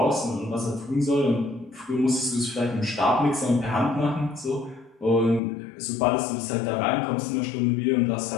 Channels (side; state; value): right; drops out; at 5.4 s